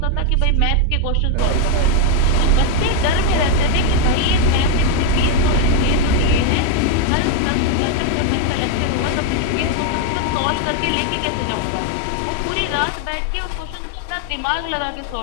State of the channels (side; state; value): both; different; correlation 0.00